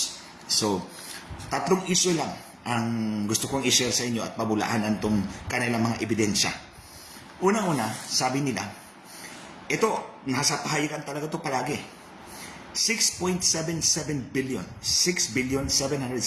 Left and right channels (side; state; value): both; identical; correlation 1.00